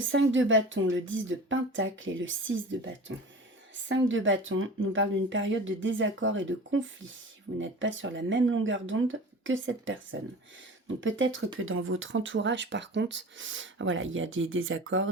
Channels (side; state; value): both; normal; correlation 0.37